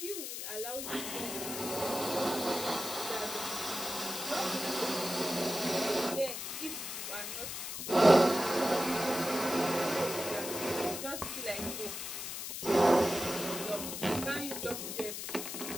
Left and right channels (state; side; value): noise; left; hiss, 6 dB below the sound